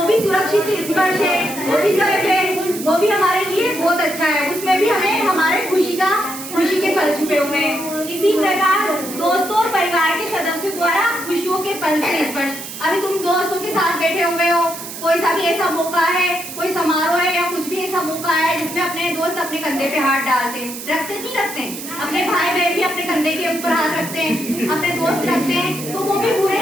भी सुरक्षित स्पर्श है, वो भी सेफ है, वो भी हमारे लिए बहुत अच्छा है। उसमें भी हमें हमारे खुशी के पल छुपे हुए हैं। इसी प्रकार दोस्तों और परिवार के सदस्यों द्वारा खुशियों के पल से स्पर्श। अभी तुम दोस्तों के साथ बैठे हुए हो, कोई सा भी ऐसा मौका है, कोई समारोह है या कुछ भी ऐसा मौका है जिसमें अपने दोस्त अपने कंधे पे हाथ डालते हैं, रखते नहीं रखते? अपने भाई बहन भी अपने कंधे के ऊपर हाथ रखते हैं, अपने दोस्त रखते हैं। तो वो भी बुरे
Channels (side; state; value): right; noise; hiss, 10 dB below the sound